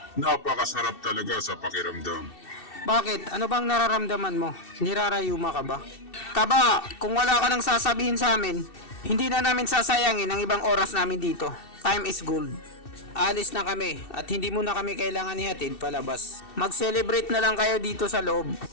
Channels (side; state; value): right; late; 2.7 ms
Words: Napakasarap talaga sa pakiramdam. Bakit? Ano bang nararamdaman mo? Nirarayuma ka ba? Taba, kung wala ka nang sasabihin sa amin, hindi na namin sasayangin ang ibang oras namin dito. Time is gold. Alis na kami at hindi mo na kami kailangan ihatid palabas. Mag-celebrate na lang kayo dito sa loob.